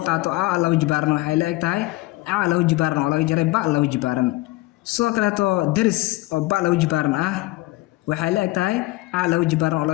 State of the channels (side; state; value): right; quieter; 19.6 dB